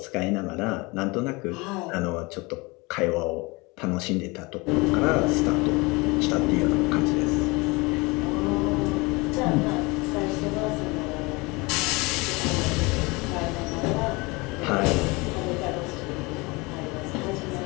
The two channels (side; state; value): right; quieter; 25.3 dB